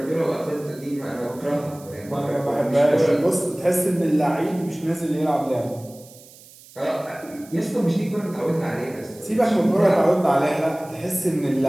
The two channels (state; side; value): noise; right; hiss, 22 dB below the sound